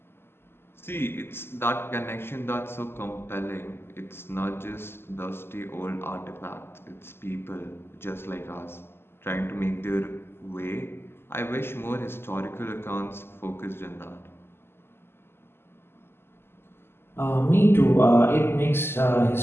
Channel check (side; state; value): right; late; 0.12 ms